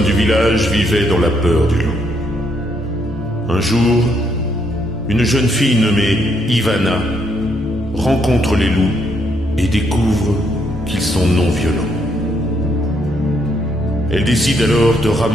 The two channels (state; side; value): normal; both; correlation 0.74